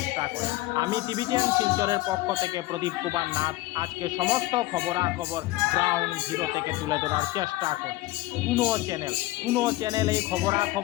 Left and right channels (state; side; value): quieter; right; 18.0 dB